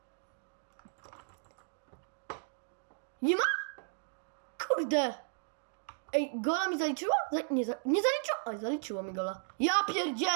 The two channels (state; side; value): silent; left; digital silence